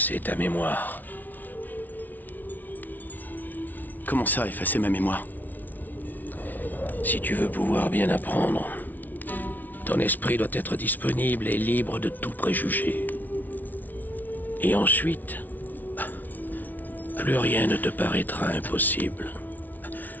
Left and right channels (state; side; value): late; right; 0.082 ms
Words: ta mémoire. Comment ça, effacer ma mémoire? Si tu veux pouvoir bien apprendre, ton esprit doit être disponible et libre de tout préjugé. Et ensuite, plus rien ne te paraîtra impossible.